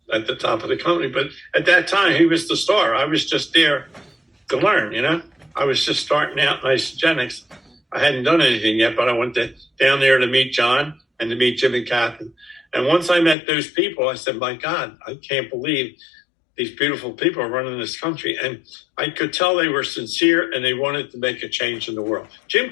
at the top of the company. But at that time, he was the star. I was just there to learn, you know. I was just starting out in Isagenix. I hadn't done anything yet, but I went down there to meet John and to meet Jim and Kathy. And once I met those people, I said, my God, I can't believe these beautiful people are running this country. And I could tell they were sincere and they wanted to make a change in the world. Jim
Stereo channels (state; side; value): drops out; right; at 13.4 s